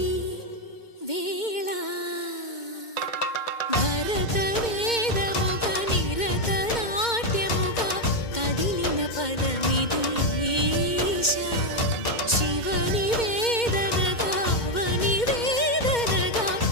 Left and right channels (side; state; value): right; late; 2.1 ms